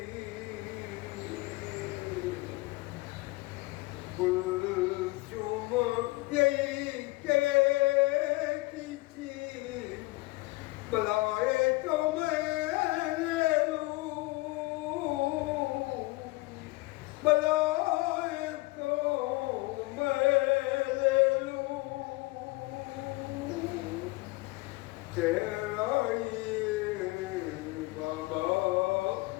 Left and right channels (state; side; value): quieter; right; 22.4 dB